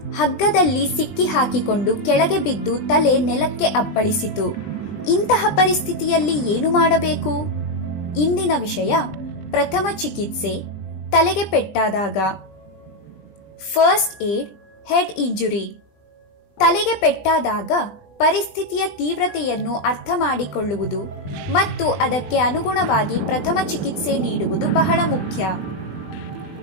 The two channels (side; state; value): right; late; 20 ms